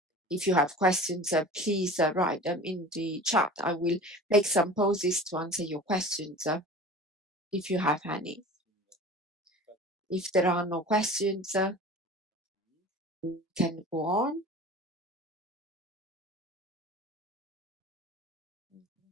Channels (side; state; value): both; normal; correlation 0.39